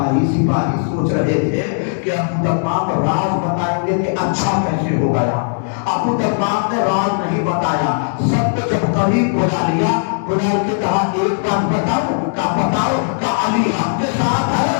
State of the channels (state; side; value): silent; right; digital silence